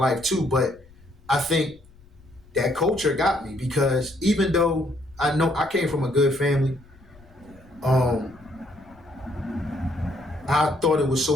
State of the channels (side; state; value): left; noise; rumble, 26 dB below the sound